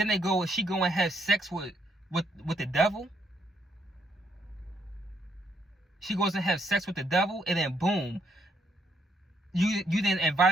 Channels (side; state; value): both; normal; correlation 0.73